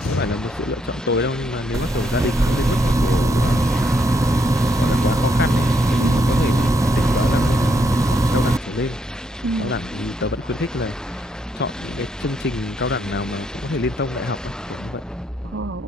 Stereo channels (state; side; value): normal; both; correlation 0.75